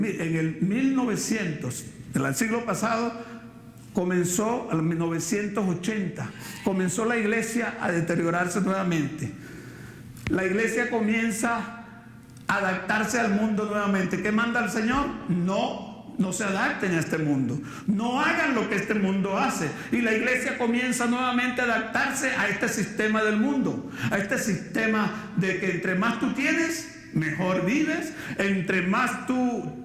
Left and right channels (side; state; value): both; identical; correlation 1.00